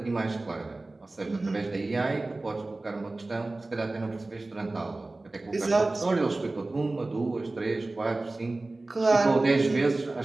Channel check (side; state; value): left; quieter; 3.0 dB